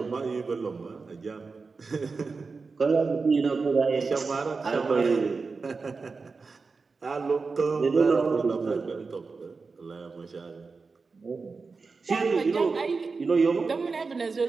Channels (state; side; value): quieter; left; 4.4 dB